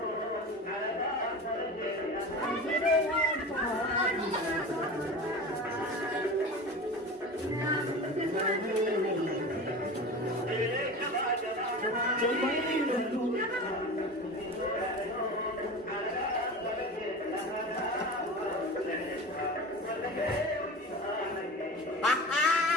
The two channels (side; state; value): both; normal; correlation 0.32